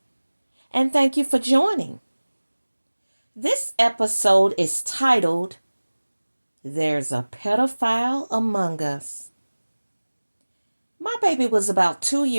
and thank you for joining. This episode is titled, There's a Pedophile Among Us. My baby was about 2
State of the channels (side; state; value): both; inverted; correlation -1.00